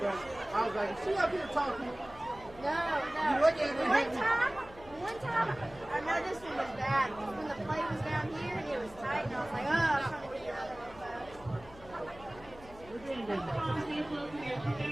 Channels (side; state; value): left; noise; hum, 20 dB below the sound